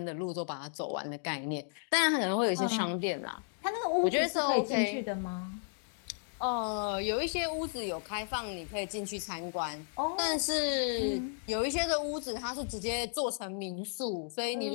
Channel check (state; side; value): silent; right; digital silence